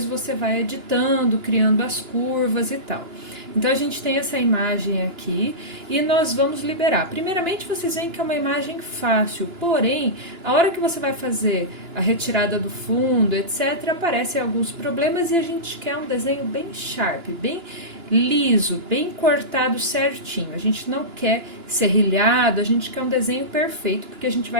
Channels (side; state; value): left; late; 2.9 ms